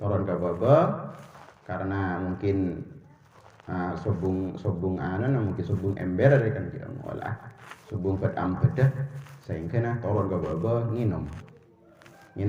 ke baba karena mungkin sobung mungkin sobung ember kan kita ngolah sobung pedam bedah sehingga toron ke baba nginom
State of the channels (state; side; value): identical; both; correlation 1.00